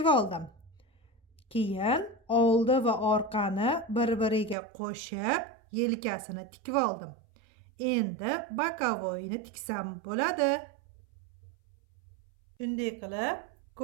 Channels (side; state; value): left; drops out; at 4.5 s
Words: oldim. Keyin oldi va orqani bir-biriga qo'shib, yelkasini tikib oldim. Endi bokovoyni tiksam bo'ladi. Shunday qilib,